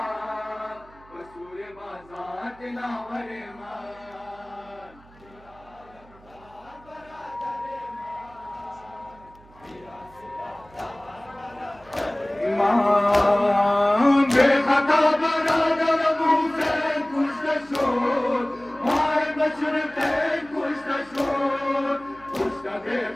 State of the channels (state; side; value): noise; right; hum, 25 dB below the sound